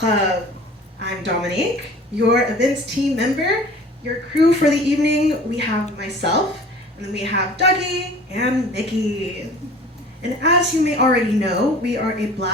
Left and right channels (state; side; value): normal; both; correlation 0.45